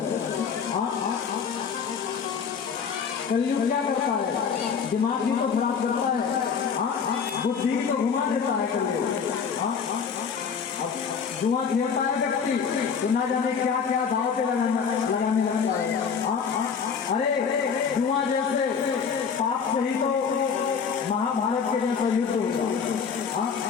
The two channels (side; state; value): right; quieter; 6.4 dB